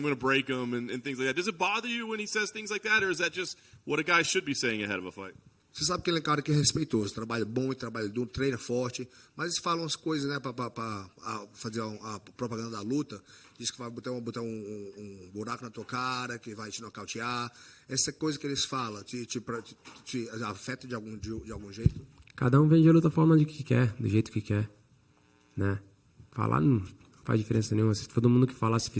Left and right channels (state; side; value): identical; both; correlation 1.00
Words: going to break him and things like that. Does it bother you when he says things like that, or is that just what a guy should be saying ahead of a fight? Você sabe que ele é um cara que é respeitoso, trabalha bom e trabalha duro, treina forte, mas eles falam as coisas, né, para fazer a propaganda da luta. Diz que vai botar um buraco na tua cara, que vai te nocautear. Essa coisa que eles falam te afeta de algum jeito? Cada um vende a luta forma de que quer, do jeito que quer, né? Falar não faz diferença nenhuma. Se todo mundo que falasse,